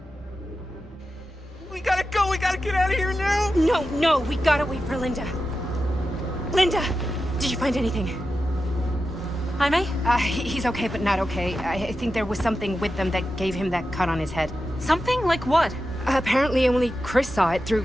Get out of here now! No, we gotta wait for Linda. Linda, did you find anything? Jaime? He's okay, but not okay. I think there was something with them that gave him that cut on his head. Something? Like what? Apparently only Chris saw it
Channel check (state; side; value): normal; both; correlation 0.91